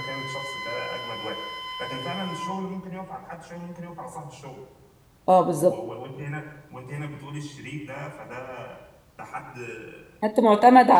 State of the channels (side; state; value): both; identical; correlation 1.00